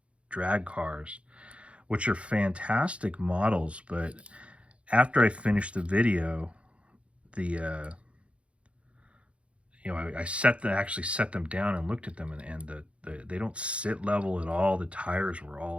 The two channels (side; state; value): left; late; 0.061 ms